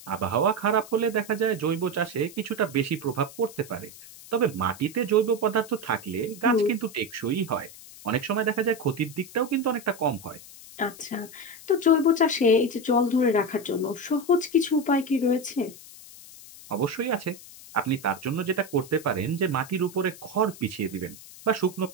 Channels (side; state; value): left; noise; hiss, 18 dB below the sound